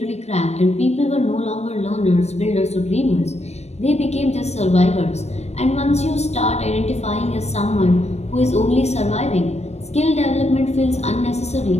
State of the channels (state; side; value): late; right; 0.32 ms